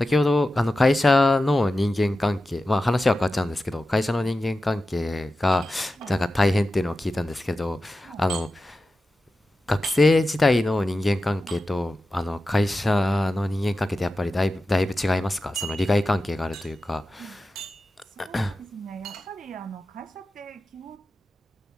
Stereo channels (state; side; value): normal; both; correlation 0.93